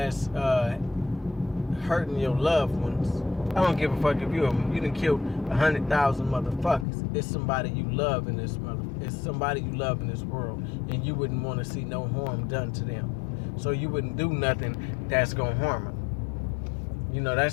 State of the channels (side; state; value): right; drops out; at 6.9 s